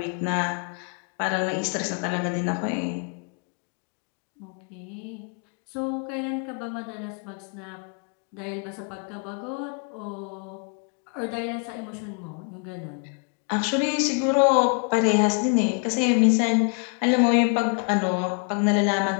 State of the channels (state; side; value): quieter; right; 39.2 dB